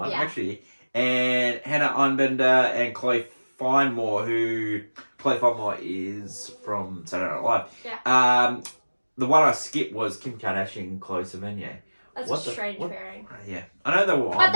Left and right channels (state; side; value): inverted; both; correlation -1.00